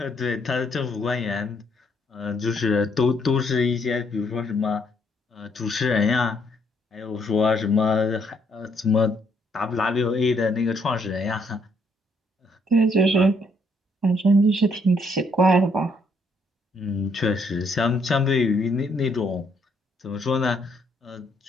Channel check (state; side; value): normal; both; correlation 0.70